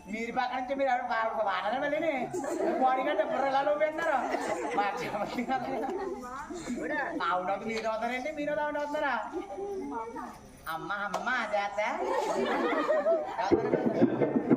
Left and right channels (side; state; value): both; identical; correlation 1.00